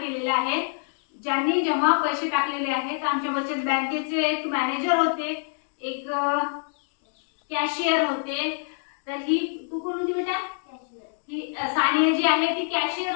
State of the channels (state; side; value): silent; right; 61 dB below the other